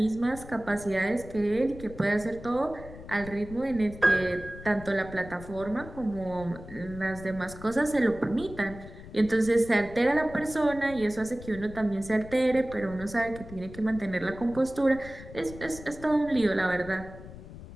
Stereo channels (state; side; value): noise; left; rumble, 15 dB below the sound